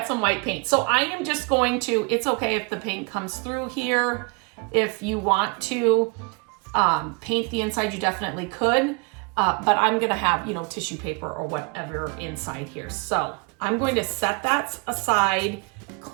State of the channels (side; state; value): left; quieter; 31.8 dB